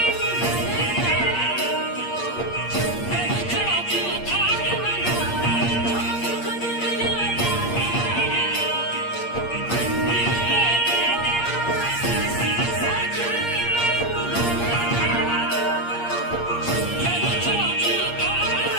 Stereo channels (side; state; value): right; late; 8.5 ms